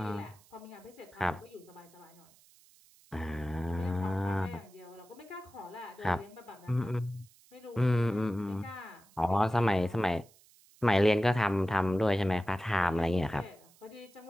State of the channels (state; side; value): noise; right; hiss, 28 dB below the sound